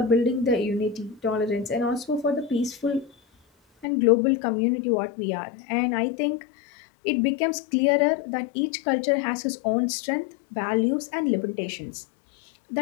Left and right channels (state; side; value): drops out; right; at 3.9 s